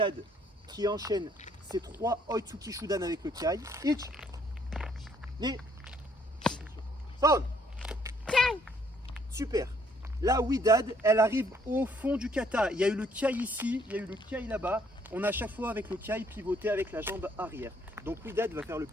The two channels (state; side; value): normal; both; correlation 0.66